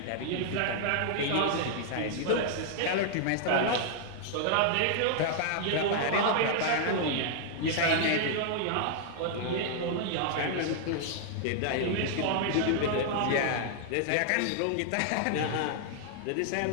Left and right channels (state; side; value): different; both; correlation 0.00